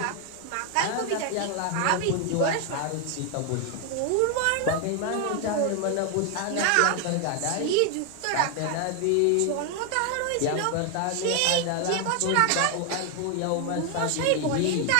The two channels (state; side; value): different; both; correlation 0.01